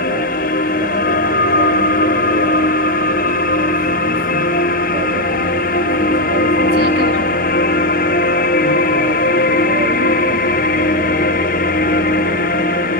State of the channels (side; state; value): both; normal; correlation 0.04